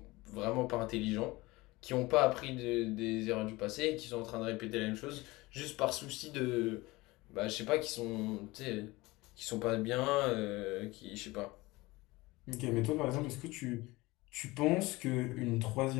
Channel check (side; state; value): right; quieter; 21.2 dB